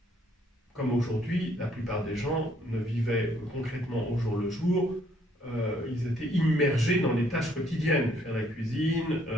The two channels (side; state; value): both; normal; correlation 0.66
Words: comme aujourd'hui, la plupart des gens ne vivaient concrètement au jour le jour. Ils étaient immergés dans les tâches quotidiennes. Faire la cuisine,